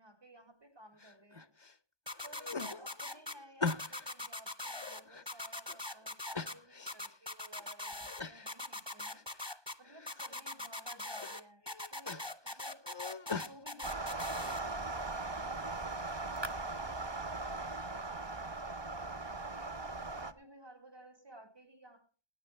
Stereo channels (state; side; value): late; left; 1.2 ms